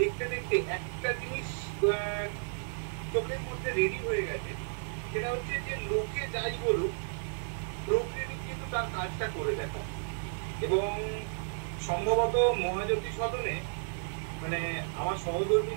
দেখতে একটা জিনিস চোখের মধ্যে রেডি হয়ে গেছে, সেটা হচ্ছে যে লোকে যাই বলুক, প্রোক্রিয়েটিভ কিন্তু তার কাজটা করে দেখা। এবং সম্ভবত মহাজ্যোতি সদনে মানে আমার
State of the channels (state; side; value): silent; left; digital silence